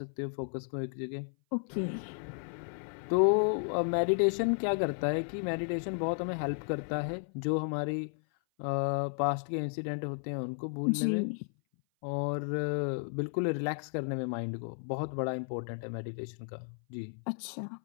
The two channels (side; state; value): right; silent; 56 dB below the other